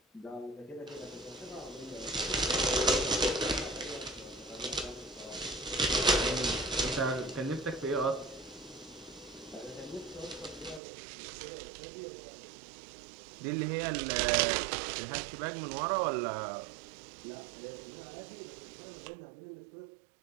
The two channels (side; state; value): left; drops out; at 10.8 s